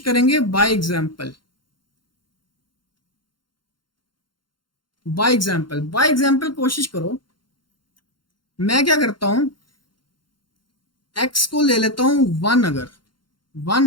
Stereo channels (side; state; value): right; late; 0.72 ms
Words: करेंगे बाय एग्जाम्पल, बाय एग्जाम्पल कोशिश करो। मैं क्या करता हूं, x को ले लेता हूं 1, अगर